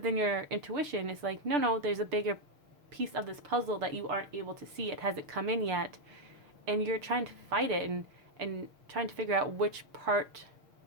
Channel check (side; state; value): left; late; 6.8 ms